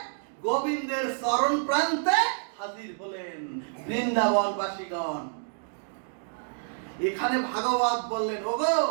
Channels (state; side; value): silent; left; digital silence